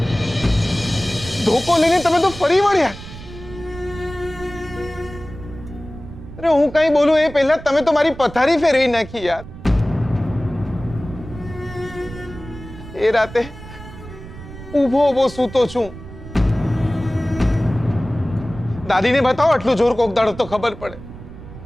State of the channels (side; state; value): right; noise; rumble, 14 dB below the sound